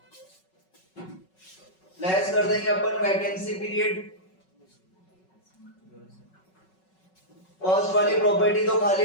लेस कर देंगे अपन वैकेंसी पीरियड। फर्स्ट वाली प्रॉपर्टी तो खाली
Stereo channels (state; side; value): late; right; 5.4 ms